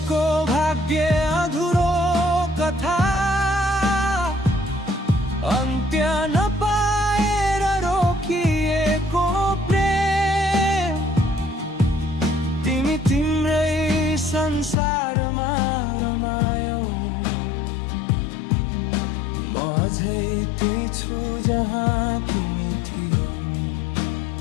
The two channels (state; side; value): drops out; right; at 14.8 s